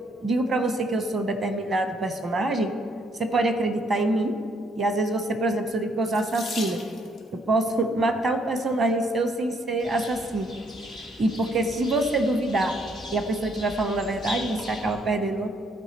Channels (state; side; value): normal; both; correlation 0.69